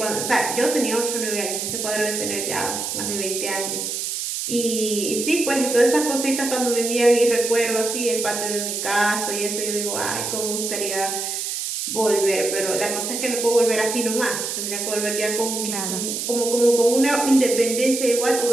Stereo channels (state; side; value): noise; right; hiss, 3 dB below the sound